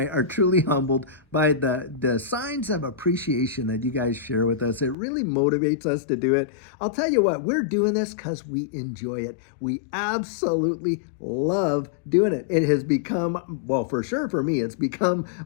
are truly humbled by the signs of appreciation that you guys share with us. It really motivates us to do it. I'll tell you what, we're doing this because we enjoy it. We absolutely love doing it. It has become, well, for sure for me, it's become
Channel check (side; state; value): right; drops out; at 5.0 s